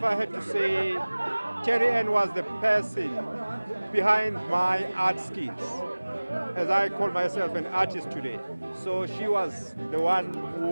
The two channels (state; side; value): inverted; both; correlation -1.00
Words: I had to say, Terry Ann was the person behind my art skills, as I call myself an artist today. So she was the one